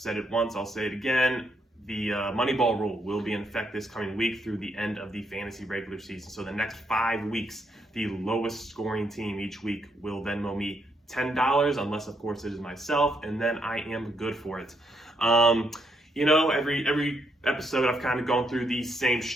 it once, I'll say it again. The Moneyball rule will be in effect this coming week through the end of the fantasy regular season. So the next 5 weeks, the lowest scoring team each week will Venmo me $10, unless of course it is myself, and then I am good for it. You know, every episode I've kind of gone through the same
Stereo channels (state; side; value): normal; both; correlation 0.76